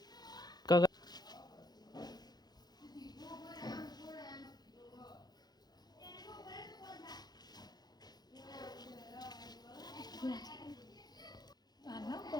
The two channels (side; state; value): right; late; 0.19 ms